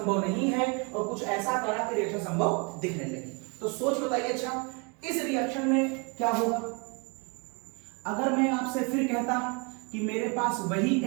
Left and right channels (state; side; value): quieter; left; 32.1 dB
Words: नहीं है और कुछ ऐसा करा कि रिएक्शन संभव दिखने लगी। तो सोच बताइए, अच्छा इस रिएक्शन में क्या होगा? अगर मैं आपसे फिर कहता कि मेरे पास वही